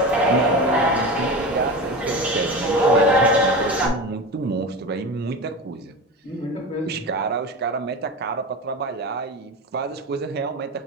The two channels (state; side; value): normal; both; correlation 0.26